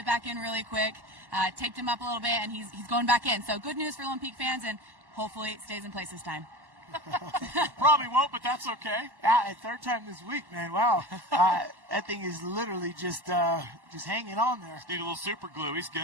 back in really quick, taped him up a little bit, and he's going back in. So good news for Lone Peak fans, and hopefully it stays in place this time. Probably won't, but that's okay. Yeah, 3rd time this week, man. Wow. That thing is literally just hanging on there. Just need a little super glue. He's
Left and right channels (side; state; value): left; late; 1.1 ms